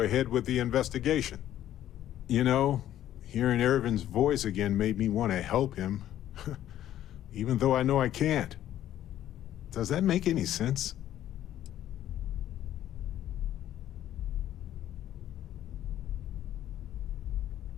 ahead with the investigation. You know, hearing Irvin's voice again made me want to help him. Even though I know I can't. Does that make any sense?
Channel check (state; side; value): quieter; right; 12.1 dB